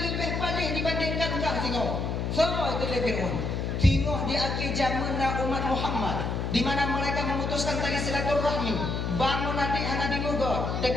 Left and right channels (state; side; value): noise; left; hum, 1 dB below the sound